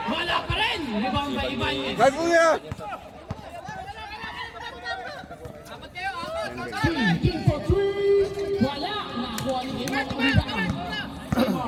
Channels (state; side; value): identical; both; correlation 1.00